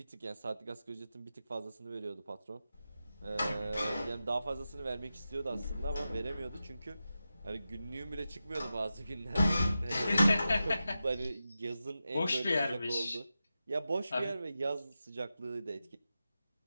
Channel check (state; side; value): inverted; both; correlation -0.91